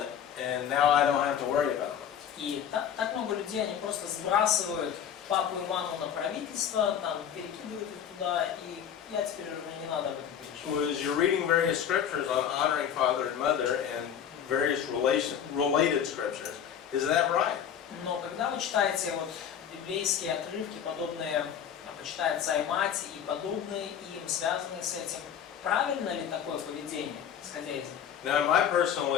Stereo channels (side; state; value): right; quieter; 8.8 dB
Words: and now I don't have to worry about them. И так много людей, они просто сбрасывают папу и маму на правительство, перекидывают их туда, и я теперь уже мне не надо об этом переживать. Well, as you're reading various scriptures on honoring father and mother and various related scriptures, is that right? Но когда вы читаете библейские отрывки, подобные «Почитай отца и мать» и подобные им, связанные с этим, правильно ли такое поведение, исходя из них? Now, in my personal